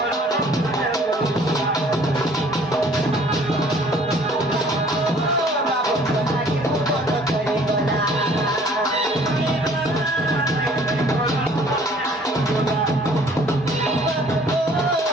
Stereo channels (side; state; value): both; normal; correlation 0.55